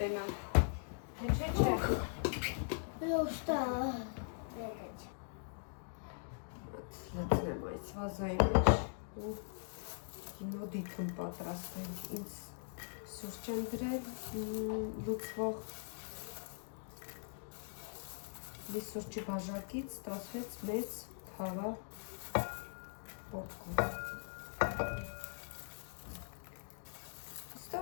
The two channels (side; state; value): right; silent; digital silence